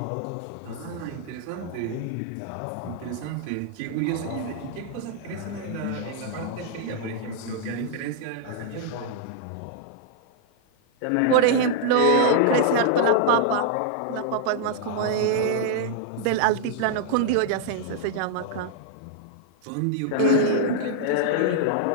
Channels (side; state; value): both; different; correlation -0.01